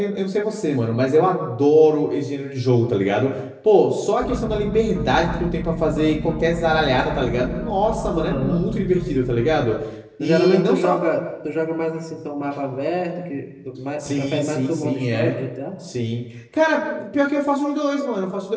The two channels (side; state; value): both; identical; correlation 1.00